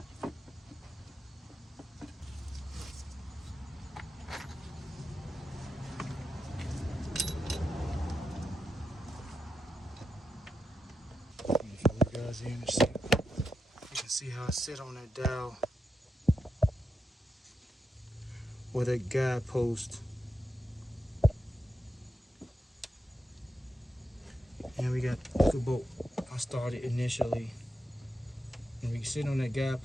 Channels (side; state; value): both; normal; correlation 0.87